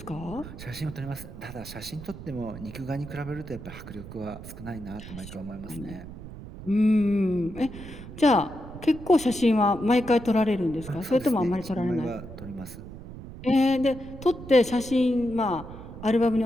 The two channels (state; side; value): noise; right; rumble, 13 dB below the sound